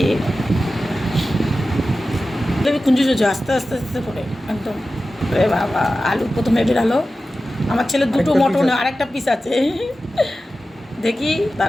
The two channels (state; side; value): normal; both; correlation 0.94